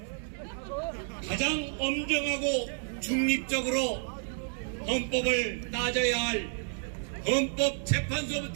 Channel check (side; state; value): left; silent; digital silence